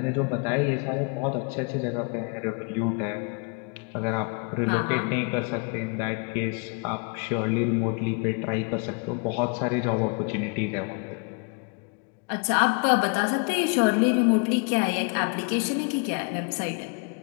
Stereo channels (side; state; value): right; quieter; 35.5 dB